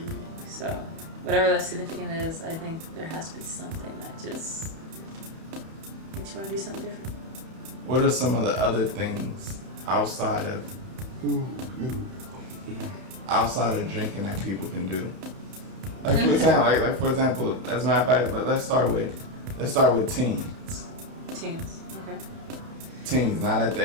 So, whatever that significant is, I think there has to be something that just makes you want to do something different. What are some of the other things outside of drinking that people can do? Like for example, as a matter of fact, let's start with teens. Teens, okay. Teens, not at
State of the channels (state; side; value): late; left; 31 ms